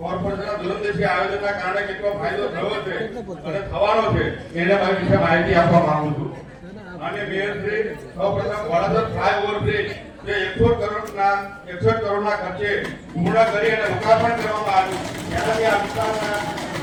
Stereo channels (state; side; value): identical; both; correlation 1.00